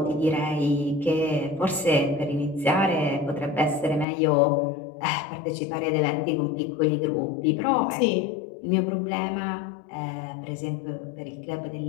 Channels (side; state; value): right; drops out; at 4.0 s